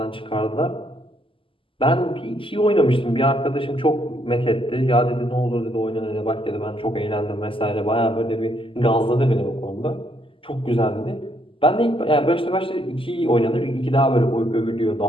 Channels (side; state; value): right; late; 0.25 ms